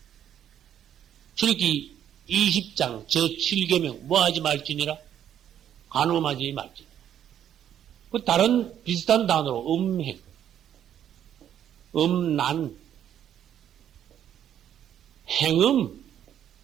출애굽기 20장 제7계명 뭐하지 말지니라 간음하지 말지니라. 그 다른 비슷한 단어로 음행, 음란, 행음.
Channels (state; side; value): quieter; left; 10.1 dB